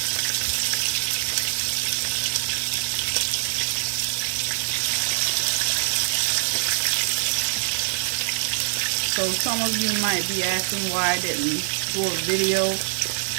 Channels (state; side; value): silent; left; 63 dB below the other